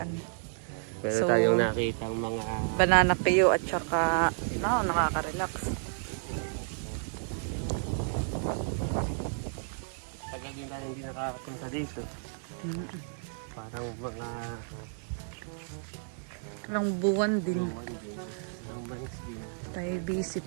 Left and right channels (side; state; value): left; silent; digital silence